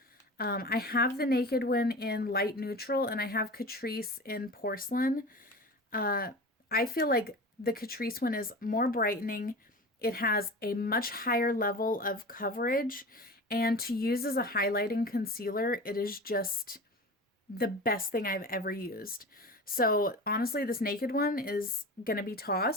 I have the Naked one in light neutral, and I have Catrice in porcelain. I feel like the Catrice one is more brightening. It has a much higher level of coverage, and to use as a highlighting concealer, it is just the best thing I've ever used. So honestly, this Naked one is gonna be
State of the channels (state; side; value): normal; both; correlation 0.33